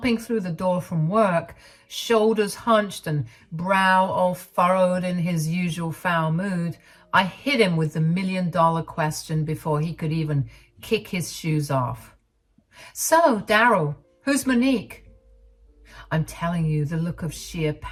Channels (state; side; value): identical; both; correlation 1.00